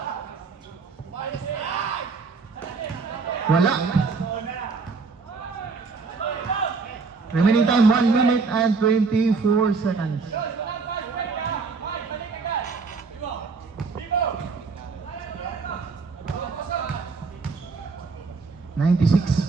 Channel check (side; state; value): left; quieter; 4.6 dB